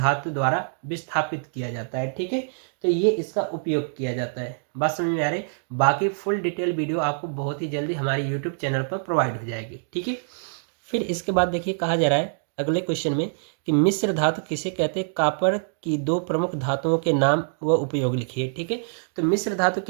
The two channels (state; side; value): silent; left; digital silence